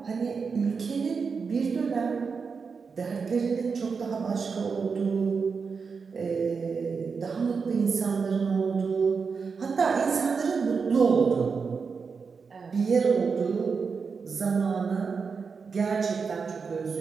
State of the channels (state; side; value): quieter; left; 5.3 dB